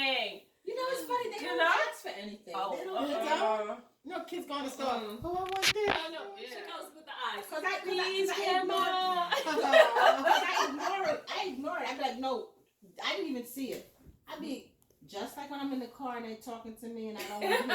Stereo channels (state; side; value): identical; both; correlation 1.00